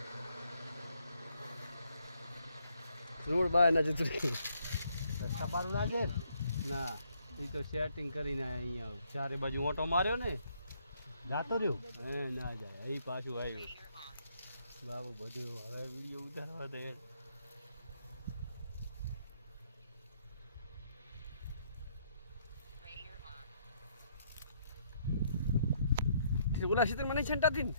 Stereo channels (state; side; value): inverted; both; correlation -0.71